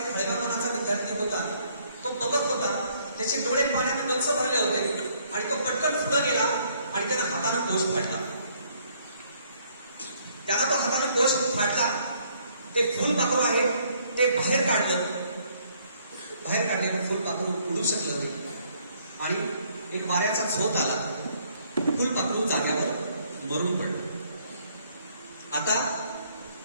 हळव्या मनाचा विद्यार्थी होता. तो बघत होता, त्याचे डोळे पाण्याने गच्च भरले होते आणि तो पटकन पुढे गेला आणि त्यानं हाताने कोश फाडला. त्याला तो हाताने कोश फाडला. ते फुलपाखरू आहे ते बाहेर काढलं. बाहेर काढलेलं फुलपाखरू उडू शकलं नाही आणि एक वाऱ्याचा झोप आला. फुलपाखरू जाग्यावर मरून पडलं. आता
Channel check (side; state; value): both; inverted; correlation -0.65